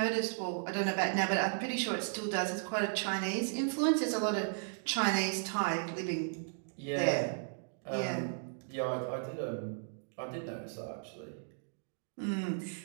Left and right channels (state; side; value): silent; left; digital silence